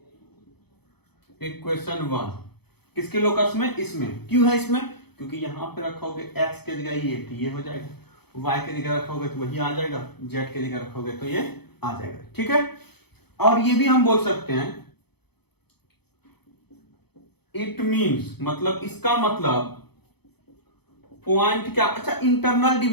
equation 1। किसके locus में, इसमें। क्यों है इसमें, क्योंकि यहां पे रखोगे x के जगह ये तो ये हो जाएगा, y के जगह रखोगे तो वही आ जाएगा, z के जगह रखोगे तो ये आ जाएगा। ठीक है, और ये भी हम बोल सकते हैं इट मीन्स, मतलब इसका मतलब पॉइंट क्या, अच्छा इंटरनल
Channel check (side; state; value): right; late; 0.97 ms